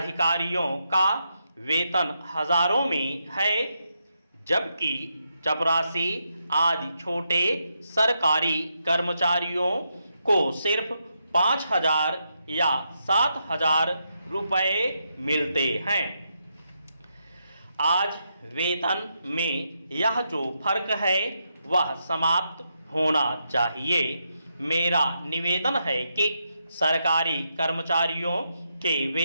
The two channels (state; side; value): inverted; both; correlation -0.82